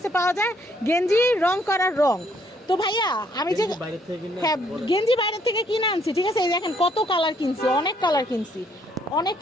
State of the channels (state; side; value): normal; both; correlation 0.68